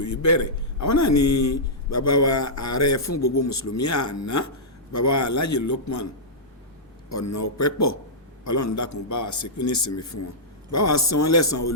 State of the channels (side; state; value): both; normal; correlation -0.12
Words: yìí bẹ̀rẹ̀, àwọn náà ni bàbá wa ààrẹ fún gbogbo mùsùlùmí àná, bàbá wa Alhaji Lukman Ọ̀nàọpẹ́pọ̀. Ọlọ́run dákun bá wa ṣekú ní ìsinmi fún wọn, bá wa san wọ́n lẹ́san